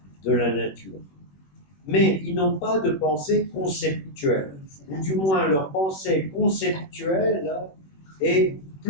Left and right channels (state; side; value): late; right; 21 ms